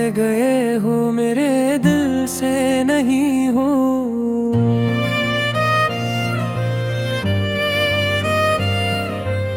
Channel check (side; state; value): both; identical; correlation 1.00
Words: गए हो मेरे दिल से नहीं हो।